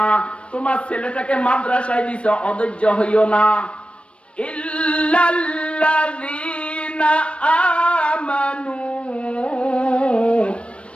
তোমার ছেলেটাকে মাদ্রাসায় দিছ, অধৈর্য হইও না। ইল্লাল্লাযীনা আমানু,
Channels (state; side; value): late; right; 0.060 ms